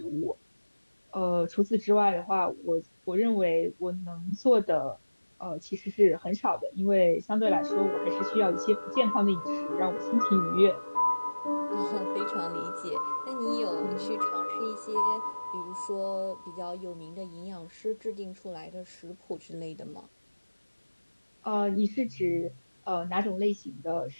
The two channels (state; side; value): inverted; both; correlation -1.00